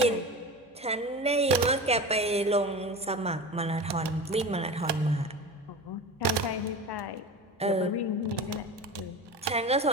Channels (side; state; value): both; normal; correlation 0.30